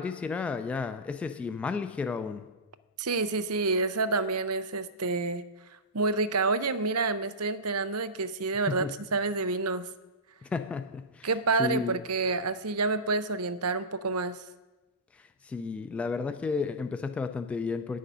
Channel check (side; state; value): both; normal; correlation -0.14